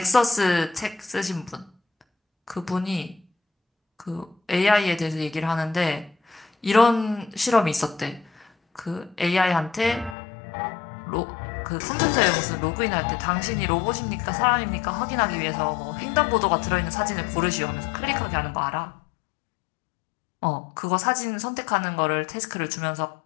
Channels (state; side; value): drops out; right; at 10.2 s